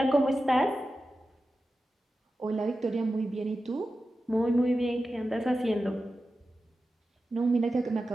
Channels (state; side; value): normal; both; correlation 0.92